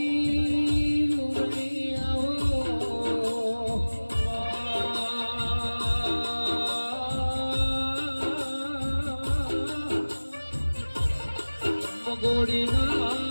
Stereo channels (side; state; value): both; inverted; correlation -1.00